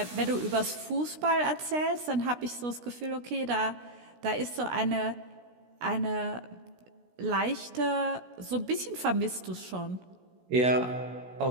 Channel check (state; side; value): late; left; 16 ms